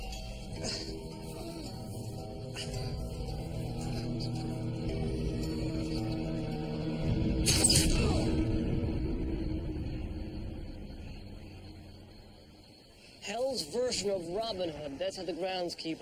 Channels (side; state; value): both; identical; correlation 1.00